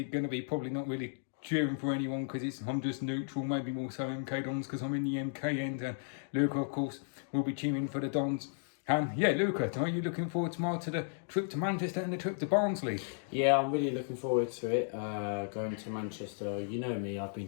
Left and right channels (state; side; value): silent; right; digital silence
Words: going to be probably not really cheering for anyone because I'm just neutral, maybe more so MK Dons because I'm in the MK end, and Luca of course will be cheering for the Dons. And yeah, Luca, are you looking forward tomorrow to the trip to Manchester and the trip to Barnsley? Yeah, I'm really looking forward to it. Going to Manchester, you know me, I've been